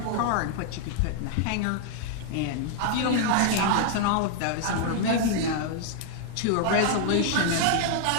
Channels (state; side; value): different; both; correlation 0.00